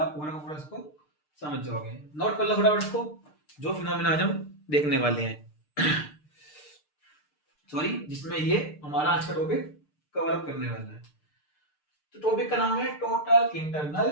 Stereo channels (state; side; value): late; right; 6.6 ms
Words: आप पूरा का पूरा इसको समझ जाओगे। नोट कर लो फटाफट इसको, जो फिनोमेना आज हम देखने वाले हैं सॉरी, जिसमें ये हमारा आज का टॉपिक कवर अप करने वाला है। तो टॉपिक का नाम है total